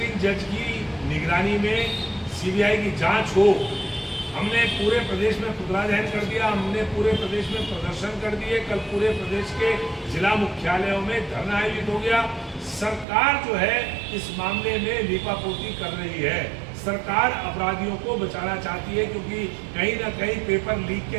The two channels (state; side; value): drops out; left; at 13.1 s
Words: जज की निगरानी में सीबीआई की जांच हो। हमने पूरे प्रदेश में पुतला दहन कर दिया, हमने पूरे प्रदेश में प्रदर्शन कर दिए। कल पूरे प्रदेश के जिला मुख्यालयों में धरना आयोजित हो गया। सरकार जो है इस मामले में लीपापोती कर रही है। सरकार अपराधियों को बचाना चाहती है, क्योंकि कहीं ना कहीं पेपर लीक